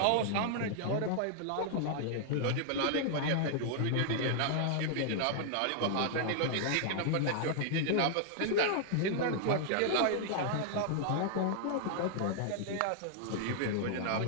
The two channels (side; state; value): both; different; correlation -0.01